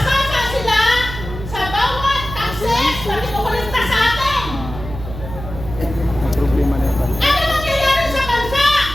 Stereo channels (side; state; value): right; noise; hum, 10 dB below the sound